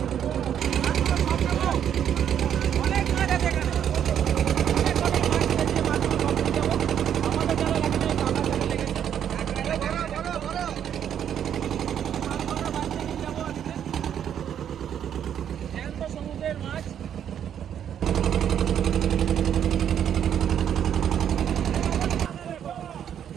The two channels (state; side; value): quieter; left; 9.3 dB